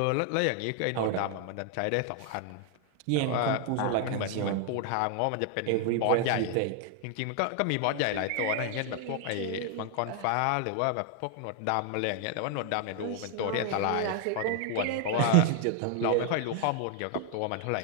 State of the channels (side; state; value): both; different; correlation 0.00